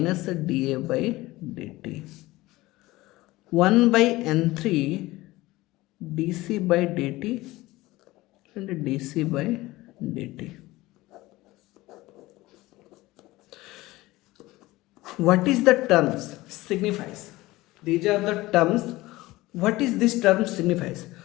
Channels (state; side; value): quieter; right; 19.0 dB